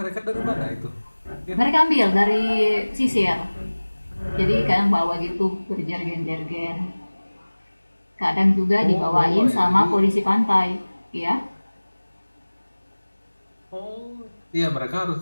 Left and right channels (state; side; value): inverted; both; correlation -1.00